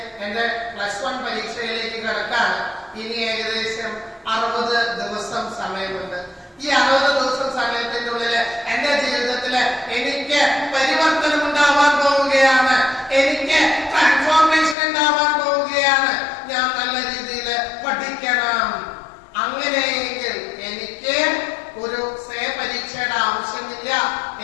എന്റെ +1 പരീക്ഷയിലേക്ക് കിടക്കാണ്. ഇനി ഏകദേശം 60 ദിവസം സമയമുണ്ട്. ഈ 60 ദിവസം സമയത്തിന്റെ ഉള്ളില് എന്റെ ജീവിതത്തില് എനിക്ക് പരിവർത്തനം ഉണ്ടാവാൻ പോവുകയാണ്. എനിക്ക് ട്രാൻസ്ഫോർമേഷൻ ഉണ്ടാവാൻ പോവുകയാണ്. ഞാൻ നല്ല രീതിയിൽ പഠിക്കണം. അങ്ങനെയെങ്കിൽ എനിക്ക് ഒരു പരീക്ഷയുടെ ആവശ്യമില്ല.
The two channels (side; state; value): right; drops out; at 14.8 s